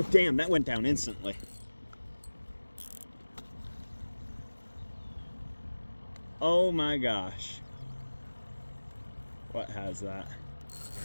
damn, that went down instantly. Oh my gosh. What has that?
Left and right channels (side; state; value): both; inverted; correlation -1.00